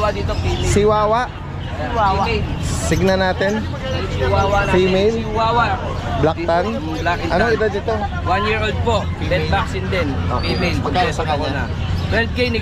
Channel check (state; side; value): identical; both; correlation 1.00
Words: dito, female. Chihuahua. Female. Signa natin. Chihuahua natin. Female? Chihuahua. Black tan. Black and Anong tan. edad dito? 1 year old po. Dead vaccine din. Okay. Female. Magkano sa Kompleto kanya? na. 12K